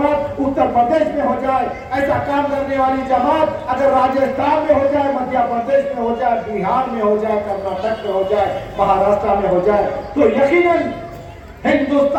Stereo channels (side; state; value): both; identical; correlation 1.00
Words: उत्तर प्रदेश में हो जाए, ऐसा काम करने वाली जमात अगर राजस्थान में हो जाए, मध्य प्रदेश में हो जाए, बिहार में हो जाए, कर्नाटक में हो जाए, महाराष्ट्र में हो जाए, तो यकीनन